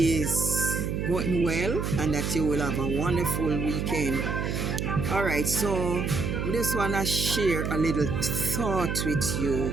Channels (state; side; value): noise; right; hum, 1 dB below the sound